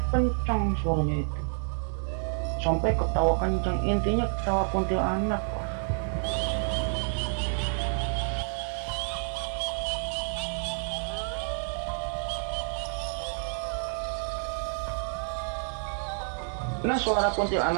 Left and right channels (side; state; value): left; silent; 58 dB below the other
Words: kencang suaranya itu. Sampai ketawa kencang, intinya ketawa kuntilanak. Nah suara